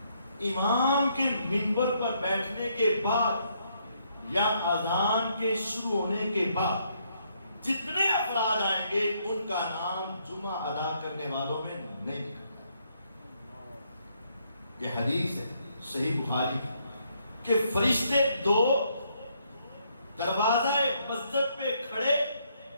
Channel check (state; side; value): inverted; both; correlation -0.72